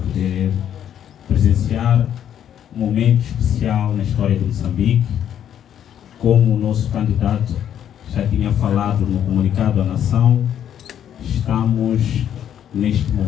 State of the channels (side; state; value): right; quieter; 9.8 dB